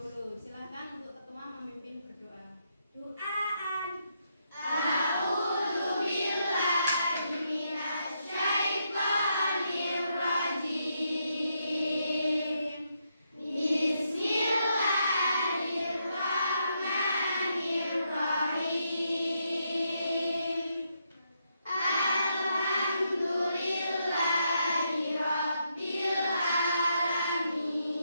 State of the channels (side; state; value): both; inverted; correlation -0.79